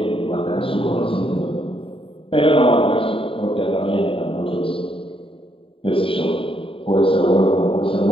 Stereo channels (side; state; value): right; late; 0.26 ms